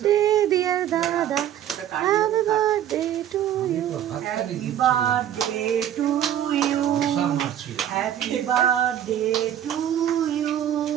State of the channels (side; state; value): left; quieter; 10.7 dB